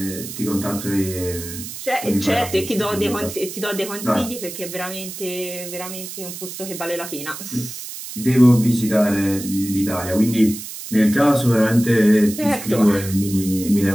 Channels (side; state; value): right; noise; hiss, 10 dB below the sound